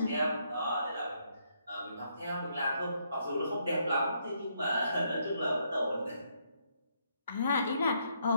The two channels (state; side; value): inverted; both; correlation -0.74